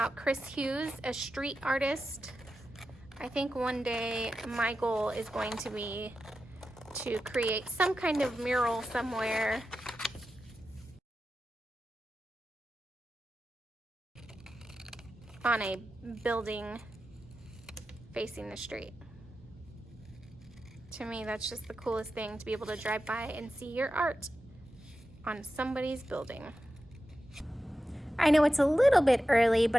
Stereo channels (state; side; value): normal; both; correlation 0.91